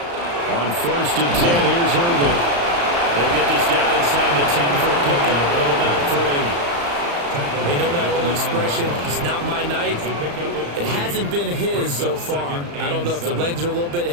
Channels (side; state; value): left; late; 35 ms